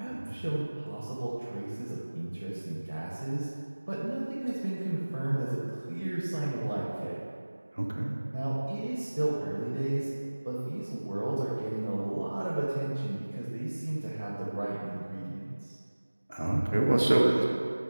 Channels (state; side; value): inverted; both; correlation -1.00